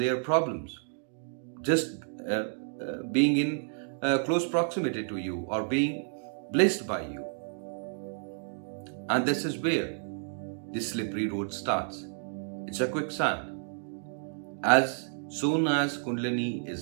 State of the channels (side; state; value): left; silent; digital silence